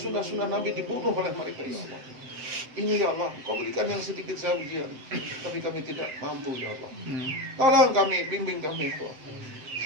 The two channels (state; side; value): late; left; 7.8 ms